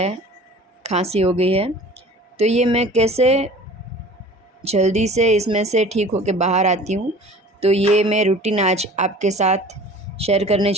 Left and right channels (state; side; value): normal; both; correlation 0.44